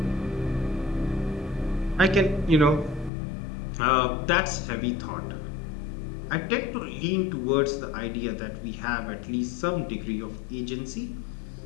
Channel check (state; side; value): drops out; right; at 3.1 s